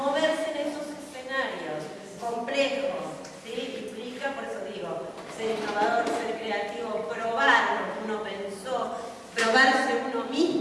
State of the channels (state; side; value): identical; both; correlation 1.00